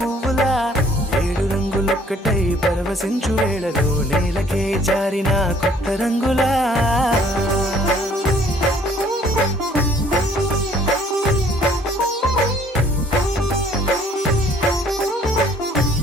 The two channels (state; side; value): normal; both; correlation 0.59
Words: పువ్వులా 7 రంగులొక్కటై పరవశించు వేళలో నేలకే జారిన కొత్త రంగులా